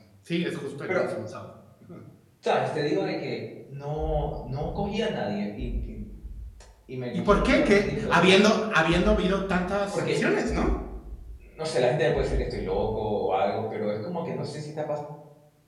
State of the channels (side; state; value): both; identical; correlation 1.00